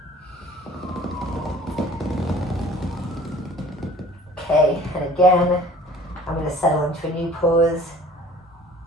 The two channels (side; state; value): both; normal; correlation 0.49